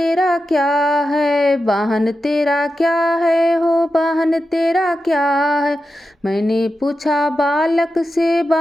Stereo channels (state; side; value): normal; both; correlation 0.90